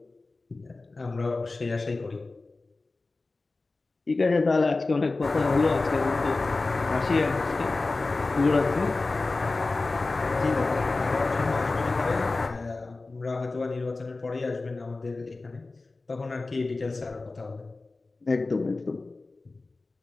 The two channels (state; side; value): quieter; right; 3.5 dB